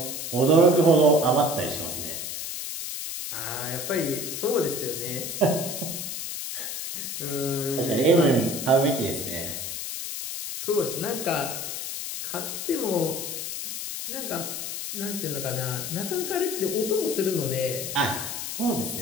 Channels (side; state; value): left; noise; hiss, 5 dB below the sound